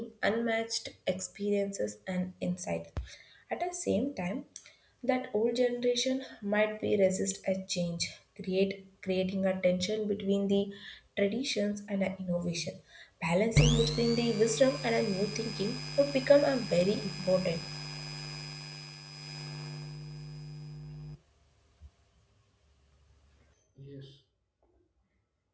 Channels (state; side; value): identical; both; correlation 1.00